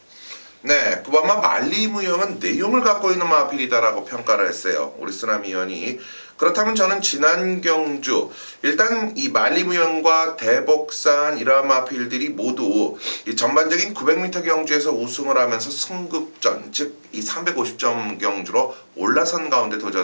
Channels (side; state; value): both; inverted; correlation -1.00